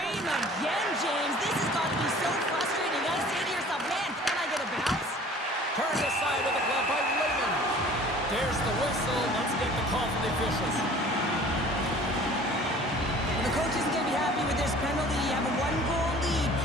again, James. This has got to be so frustrating. You got to say to yourself, man, can I get a bounce? Turned aside with a glove by Raymond. There's the whistle. Let's get the call from the officials. Well, the coach isn't going to be happy with this penalty. You have a 1-goal lead,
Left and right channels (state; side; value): normal; both; correlation 0.48